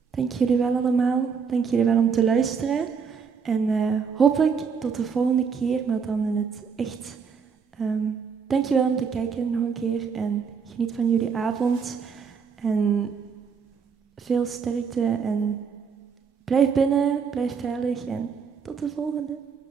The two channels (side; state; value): left; quieter; 6.1 dB